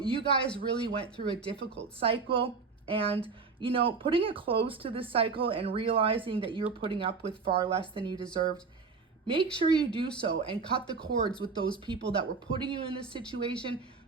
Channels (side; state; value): left; quieter; 4.8 dB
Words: guys really went through a difficult cycle, and you know, putting a close to this cycle and realizing that you're putting up with far less than you deserved, make sure you do so and cut the cords with those people that were putting you in this situation